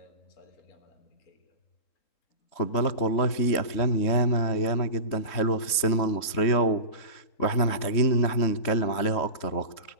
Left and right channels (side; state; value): right; late; 3.7 ms